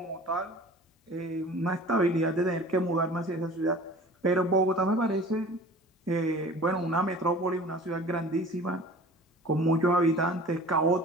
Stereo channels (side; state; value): both; normal; correlation 0.43